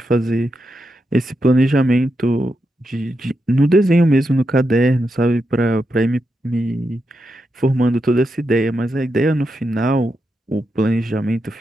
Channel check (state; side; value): normal; both; correlation 0.85